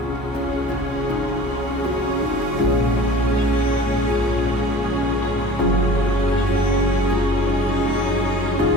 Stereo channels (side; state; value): both; normal; correlation 0.43